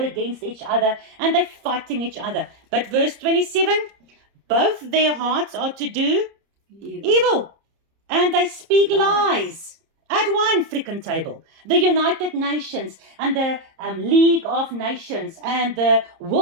against each other, and they're fighting each other. But verse 27, both their hearts are to do evil, and they speak lies at one freaking table. The United Nations and the League of Nations and the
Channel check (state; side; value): late; left; 30 ms